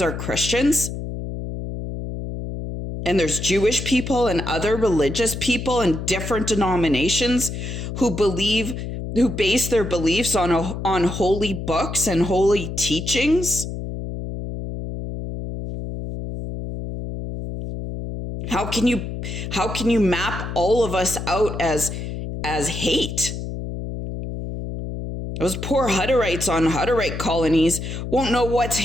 Christians. And there's Jewish people and other religious people and different denominations who base their beliefs on holy books and holy teachings. How can you map all of us out as hate? Those poor Hutterites on Hutterite colonies won't know what's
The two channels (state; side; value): noise; left; hum, 6 dB below the sound